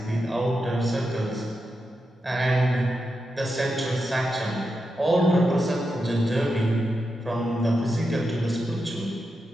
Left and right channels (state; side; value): normal; both; correlation 0.87